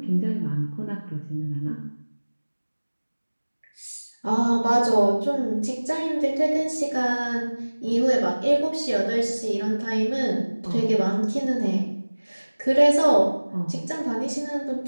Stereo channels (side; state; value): both; inverted; correlation -1.00